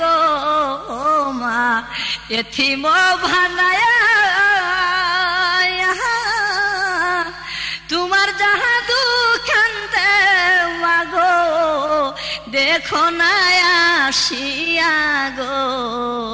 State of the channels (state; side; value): identical; both; correlation 1.00